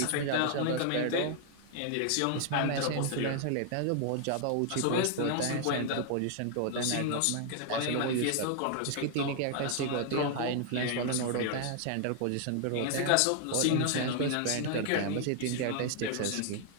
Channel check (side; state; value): both; different; correlation 0.00